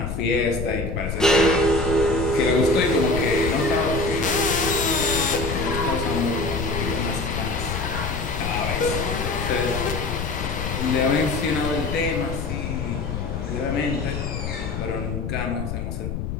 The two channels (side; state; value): left; noise; rumble, 4 dB below the sound